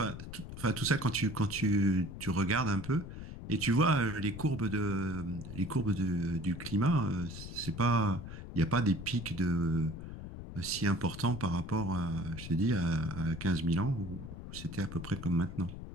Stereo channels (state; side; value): noise; left; rumble, 10 dB below the sound